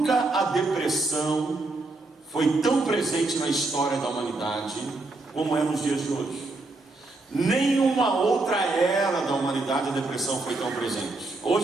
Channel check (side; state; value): left; quieter; 3.2 dB